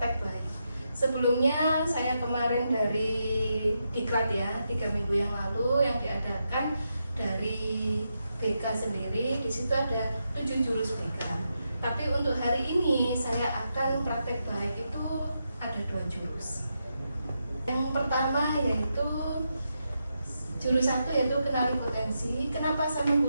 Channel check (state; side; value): inverted; both; correlation -0.84